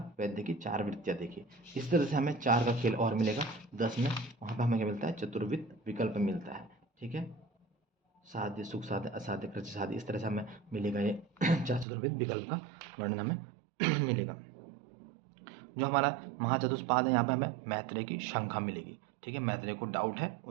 वैद्य की 4 वृत्तियाँ देखी। इस तरह से हमें 4 का खेल और मिलेगा 10 में, वहाँ पर हमें क्या मिलता है, चतुर्विध विकल्प मिलता है, ठीक है। साध्य सुख साध्य असाध्य कृत्य साध्य, इस तरह से हमें मिलेगा ये 4 चतुर्विध विकल्प का वर्णन हमें मिलेगा। जो हमारा महाचतुष्पाद है, यहाँ पे हमें मैत्रेय की शंखा मिलेगी, ठीक है। मैत्रेय को डाउट है,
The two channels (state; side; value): drops out; left; at 11.9 s